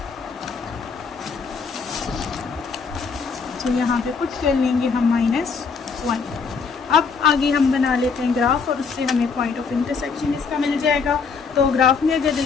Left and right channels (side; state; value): right; quieter; 5.2 dB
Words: तो यहाँ पे पुट कर लेंगे हम -1। अब आगे हम बना लेते हैं ग्राफ और उससे हमें पॉइंट ऑफ इंटरसेक्शन इसका मिल जाएगा। तो ग्राफ में अगर